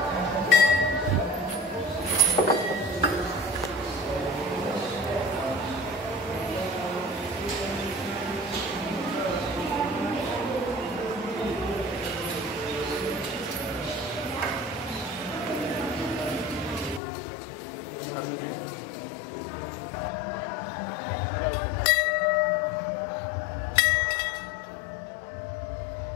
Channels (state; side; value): drops out; right; at 17.0 s